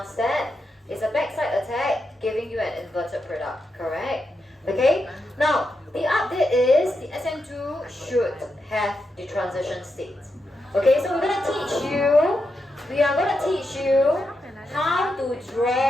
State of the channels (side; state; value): both; normal; correlation 0.86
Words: step. It's a backside attack giving you an inverted product, correct? Okay, now the update is the sn2 should have the transition state. Okay, so we are going to teach you how to